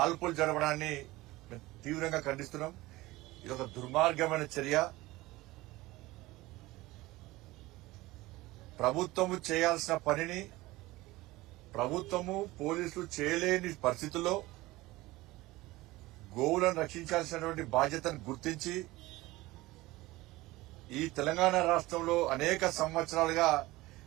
జరపడాన్ని మేము తీవ్రంగా ఖండిస్తున్నాం. ఇది ఒక దుర్మార్గమైన చర్య. ప్రభుత్వము చేయాల్సిన పనిని ప్రభుత్వము పోలీసులు చేయలేని పరిస్థితుల్లో గోవులను రక్షించాల్సినటువంటి బాధ్యతను గుర్తించి ఈ తెలంగాణ రాష్ట్రంలో అనేక సంవత్సరాలుగా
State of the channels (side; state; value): left; quieter; 19.3 dB